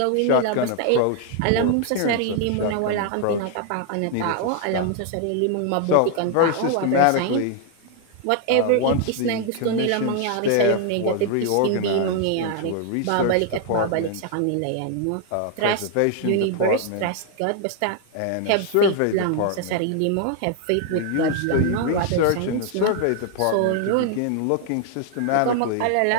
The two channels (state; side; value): different; both; correlation 0.00